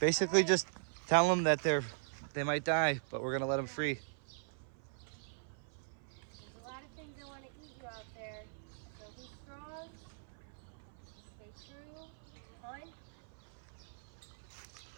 just tell them that they might die, but we're gonna let them free. There's a lot of things that want to eat you out there. So be strong, stay true, hunt,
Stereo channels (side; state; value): left; silent; 51 dB below the other